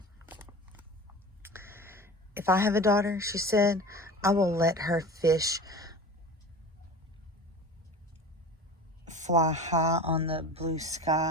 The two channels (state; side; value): normal; both; correlation 0.36